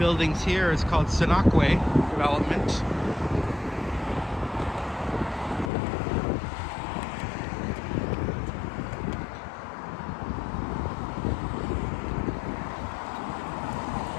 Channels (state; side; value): drops out; right; at 5.7 s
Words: here is called Senakwe Development.